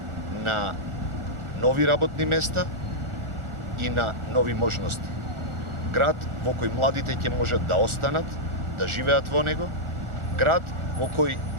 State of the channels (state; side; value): late; left; 1.4 ms